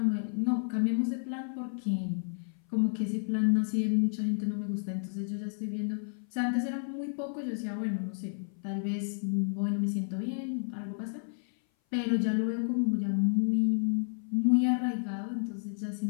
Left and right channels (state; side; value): silent; right; 57 dB below the other